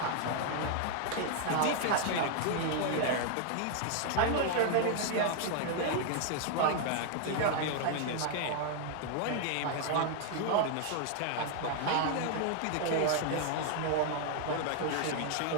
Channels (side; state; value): both; different; correlation 0.00